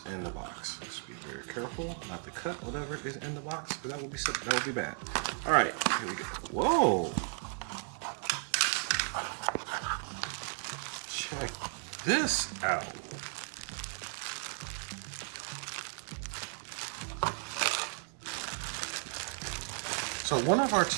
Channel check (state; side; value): silent; left; 55 dB below the other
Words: in the box. Let's be very careful not to cut whatever is in the box, because that would be bad. Alright, here we go. Whoa! Check this out. So one of our